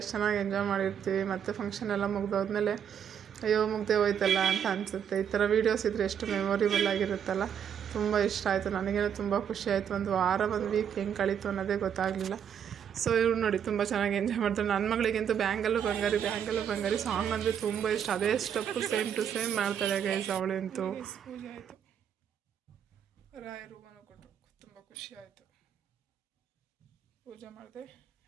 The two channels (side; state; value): left; quieter; 8.4 dB